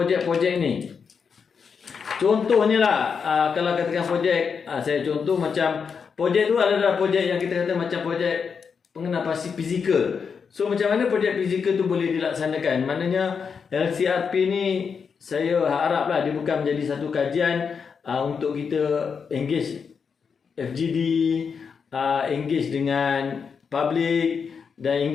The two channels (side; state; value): right; quieter; 6.1 dB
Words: ni. Contohnya lah, kalau katakan projek, saya contoh macam projek tu adalah projek yang kita kata macam projek pengenal pasti fizikal. So macam mana projek fizikal tu boleh dilaksanakan? Maknanya LCRP ni saya haraplah dia bukan menjadi satu kajian untuk kita engage FGD, engage dengan public dan